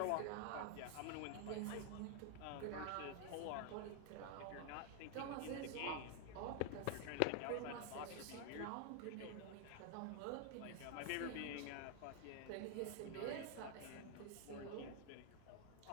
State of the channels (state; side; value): different; both; correlation 0.00